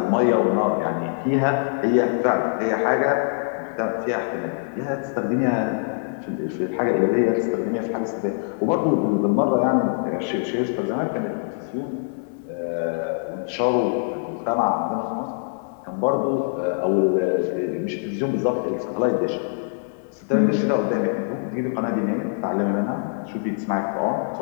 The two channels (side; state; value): right; silent; digital silence